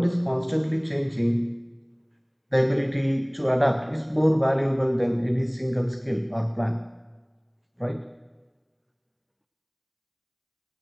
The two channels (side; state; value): both; identical; correlation 1.00